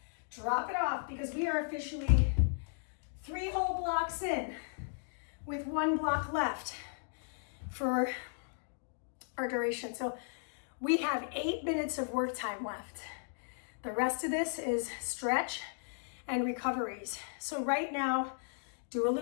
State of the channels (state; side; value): silent; right; digital silence